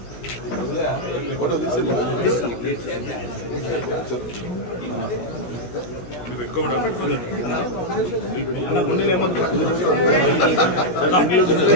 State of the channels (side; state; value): right; late; 16 ms